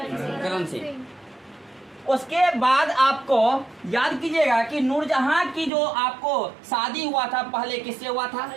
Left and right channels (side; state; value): left; drops out; at 5.7 s